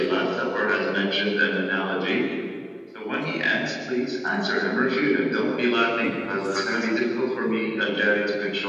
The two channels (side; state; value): both; identical; correlation 1.00